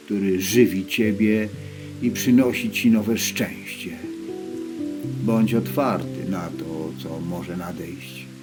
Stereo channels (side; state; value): both; identical; correlation 1.00